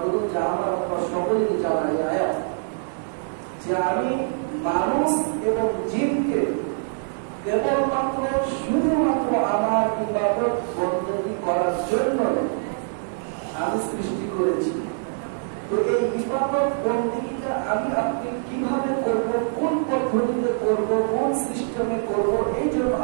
যা আমার আপনারা সকলেই জানা আয়াত, যে আমি মানুষ এবং জিনকে কেবলমাত্র শুধুমাত্র আমার ইবাদত বন্দী করার জন্য আমি সৃষ্টি করেছি। তো এই ইবাদত বন্দেগীটা আমি আপনি কিভাবে করব, কোন পদ্ধতিতে করব, কোন সিস্টেমে করব, এই জন্য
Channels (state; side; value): silent; left; digital silence